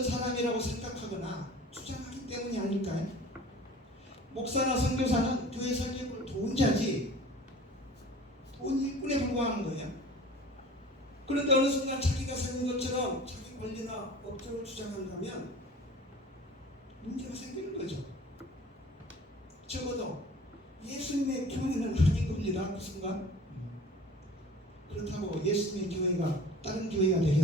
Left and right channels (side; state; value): both; normal; correlation 0.44